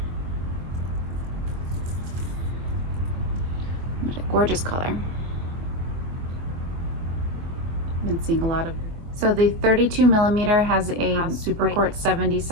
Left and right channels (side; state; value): left; late; 24 ms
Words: Gorgeous color. I've been seeing a lot of. So the 32 millimeter has a Super Court